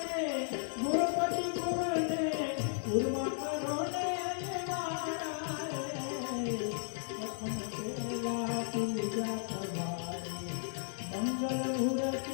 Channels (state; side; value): silent; right; digital silence